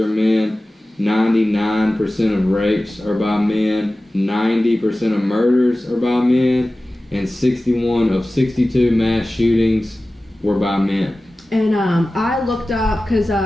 men, 99% of rapes are by men, 90% of murders are by men, and 61 of 62 mass shootings were by men. And I looked up, because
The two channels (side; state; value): both; normal; correlation 0.96